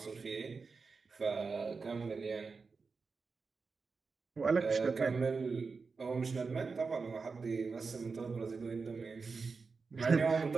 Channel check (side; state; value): left; quieter; 4.7 dB